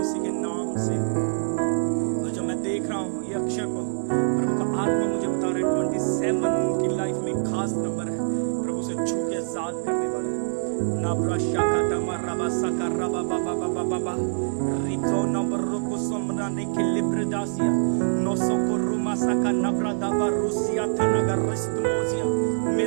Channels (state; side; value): silent; left; 62 dB below the other